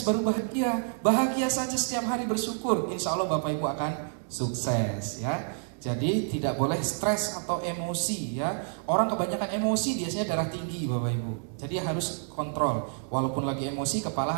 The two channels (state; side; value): silent; left; 59 dB below the other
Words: bahagia. Bahagia saja setiap hari bersyukur. Insya Allah Bapak Ibu akan sukses ya. Jadi tidak boleh stres atau emosi ya. Orang kebanyakan emosi biasanya darah tinggi Bapak Ibu. Jadi harus kontrol. Walaupun lagi emosi kepala